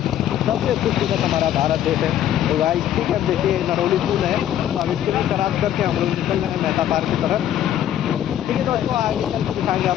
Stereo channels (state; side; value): quieter; right; 11.2 dB